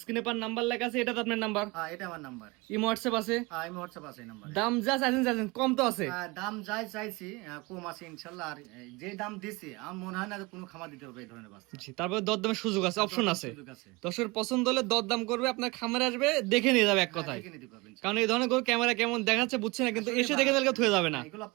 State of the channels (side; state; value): left; quieter; 24.6 dB